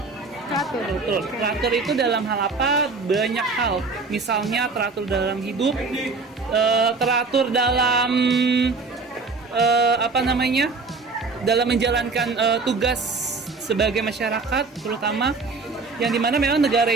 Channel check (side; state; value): left; quieter; 4.1 dB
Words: Teratur itu dalam hal apa? Banyak hal. Misalnya teratur dalam hidup, teratur dalam dalam menjalankan tugas sebagai masyarakat, terutama yang dimana memang negara